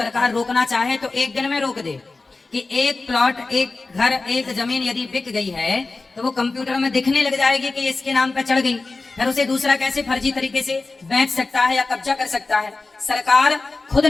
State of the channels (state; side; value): quieter; right; 3.6 dB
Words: रोकना चाहे तो एक दिन में रोक दे कि एक प्लॉट, एक घर, एक जमीन यदि बिक गई है तो वो कंप्यूटर में दिखने लग जाएगी कि इसके नाम पर चढ़ गई, फिर उसे दूसरा कैसे फर्जी तरीके से बेच सकता है या कब्जा कर सकता है। सरकार खुद